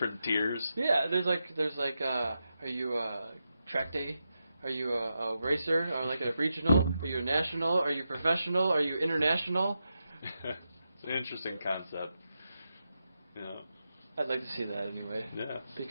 tiers. Yeah, there's like are you a track day? Are you a racer? Or like a regional? Are you a national? Are you professional? Are you international? It's an interesting concept. Yeah. I'd like to see that anyway. Yeah.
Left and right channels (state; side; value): inverted; both; correlation -0.87